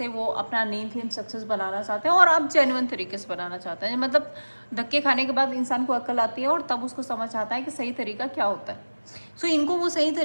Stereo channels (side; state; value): both; inverted; correlation -1.00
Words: वो अपना नेम फेम सक्सेस बनाना चाहते हैं और अब जेन्युइन तरीके से बनाना चाहते हैं। मतलब धक्के खाने के बाद इंसान को अक्ल आती है और तब उसको समझ आता है कि सही तरीका क्या होता है। सो इनको वो सही